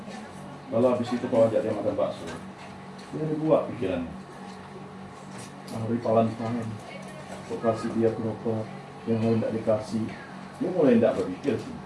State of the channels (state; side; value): identical; both; correlation 1.00